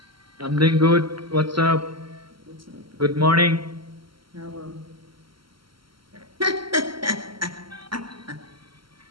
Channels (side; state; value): left; late; 0.74 ms